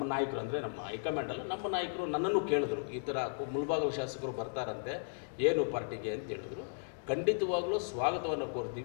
ನಾಯಕರು ಅಂದರೆ ನಮ್ಮ ಹೈಕಮಾಂಡ್ ಅಲ್ಲ, ನಮ್ಮ ನಾಯಕರು ನನ್ನನ್ನು ಕೇಳಿದ್ರು, ಈ ಥರ ಮುಳಬಾಗಿಲು ಶಾಸಕರು ಬರ್ತಾರಂತೆ, ಏನು ಪಾರ್ಟಿಗೆ ಅಂತ ಹೇಳಿದ್ರು. ಖಂಡಿತವಾಗ್ಲೂ ಸ್ವಾಗತವನ್ನು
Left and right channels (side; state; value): right; silent; digital silence